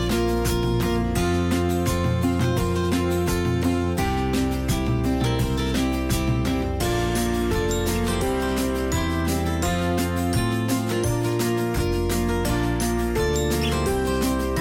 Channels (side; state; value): both; identical; correlation 1.00